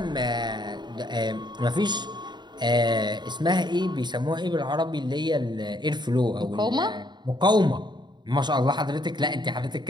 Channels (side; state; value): left; late; 0.21 ms